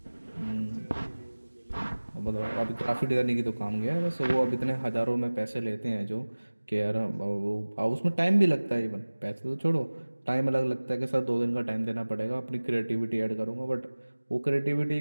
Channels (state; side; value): inverted; both; correlation -1.00